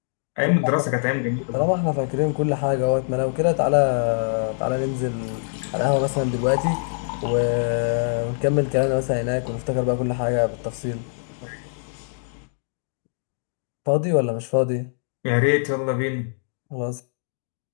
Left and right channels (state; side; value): silent; right; digital silence